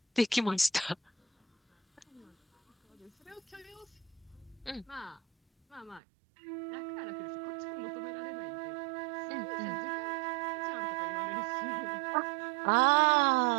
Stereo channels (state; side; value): drops out; left; at 6.0 s